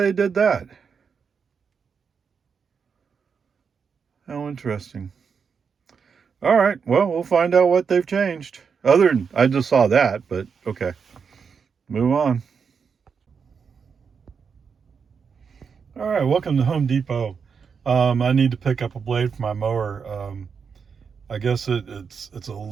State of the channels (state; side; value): quieter; left; 6.1 dB